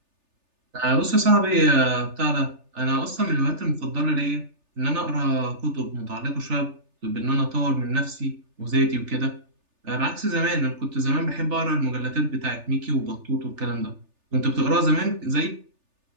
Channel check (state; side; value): late; left; 3.4 ms